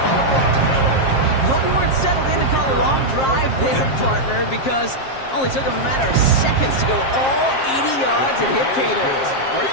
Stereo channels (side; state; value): right; late; 7.5 ms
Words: Hope you weren't settled in to call a long drive there, partner, because only took him a matter of seconds to go all 80 yards and hit pay dirt. Are